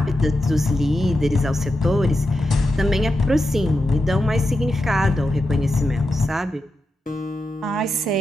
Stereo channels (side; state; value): both; normal; correlation 0.88